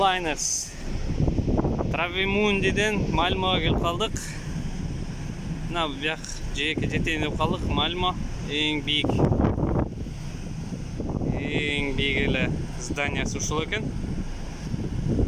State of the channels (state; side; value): identical; both; correlation 1.00